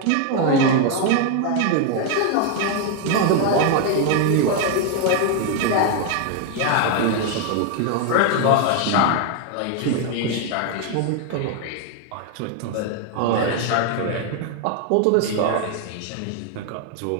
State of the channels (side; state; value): both; different; correlation 0.01